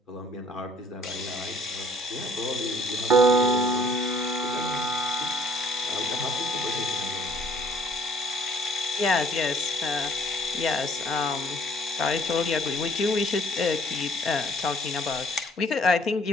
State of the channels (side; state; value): both; normal; correlation 0.60